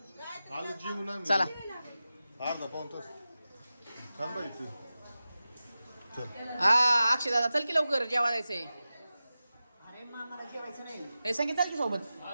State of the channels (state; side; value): inverted; both; correlation -0.94